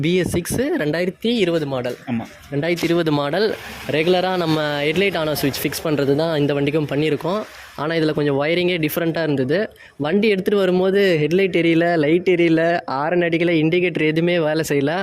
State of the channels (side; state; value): both; identical; correlation 1.00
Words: BS6 2020 மாடல். ஆமாம், 2020 மாடல். ரெகுலராக நம்ம ஹெட்லைட் ஆன் ஸ்விட்ச் ஃபிக்ஸ் பண்ணுறது தான் இந்த வண்டிக்கும் பண்ணியிருக்கோம். ஆனால் இதில் கொஞ்சம் ஒயரிங்கே டிஃப்ரெண்ட்டாக இருந்தது. வண்டி எடுத்துகிட்டு வரும்போது ஹெட்லைட் எரியல, லைட் எரியல, ஆரன் அடிக்கலை, இண்டிகேட்டர் எதுவுமே வேலை செய்யலை.